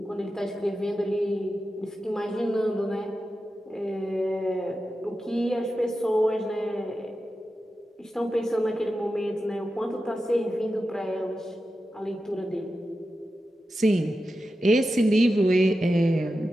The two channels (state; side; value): normal; both; correlation 0.91